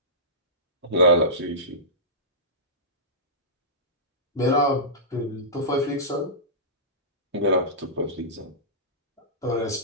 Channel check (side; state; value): both; normal; correlation -0.18